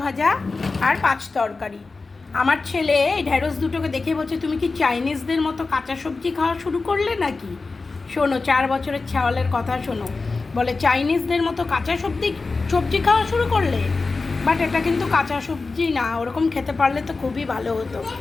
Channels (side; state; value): right; quieter; 3.9 dB